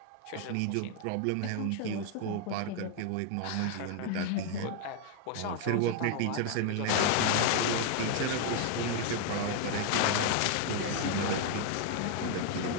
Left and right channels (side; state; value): both; different; correlation 0.00